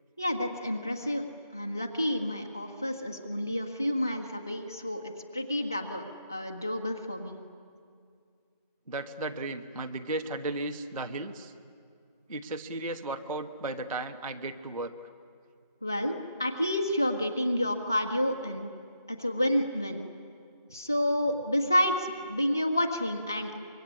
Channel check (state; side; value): inverted; both; correlation -0.78